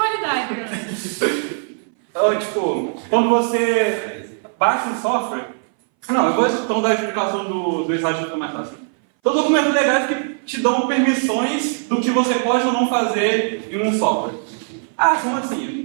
Então, tipo, quando você baixa um software... Não, eu vou então dar a explicação do slide que fica mais fácil. Então, documentos legais que te dão permissões do que você pode ou não fazer em um software. Ah, como assim? Não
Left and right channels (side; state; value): left; silent; 62 dB below the other